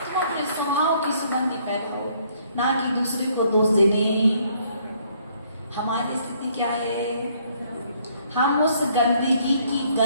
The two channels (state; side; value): inverted; both; correlation -0.65